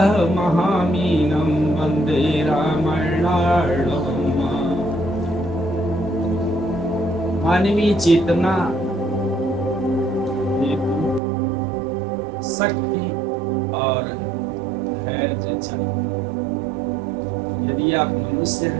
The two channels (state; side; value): drops out; left; at 11.2 s